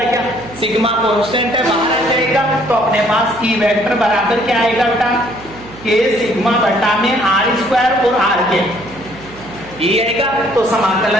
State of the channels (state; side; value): noise; right; hum, 19 dB below the sound